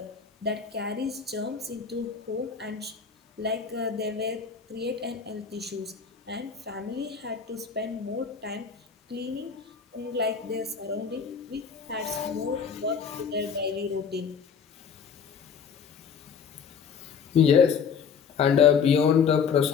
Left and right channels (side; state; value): right; quieter; 6.5 dB